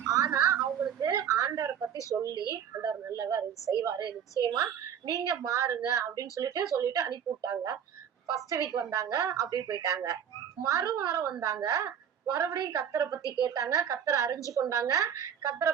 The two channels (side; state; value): left; quieter; 8.5 dB